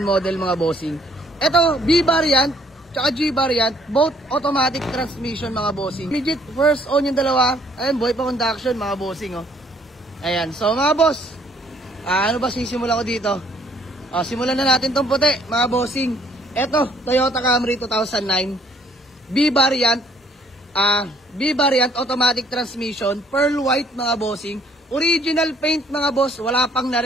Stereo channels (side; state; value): both; normal; correlation 0.63